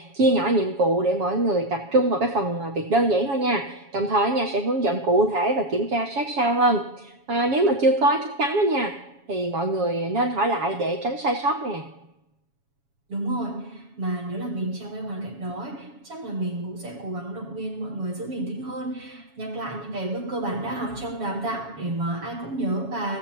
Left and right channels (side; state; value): left; late; 7.2 ms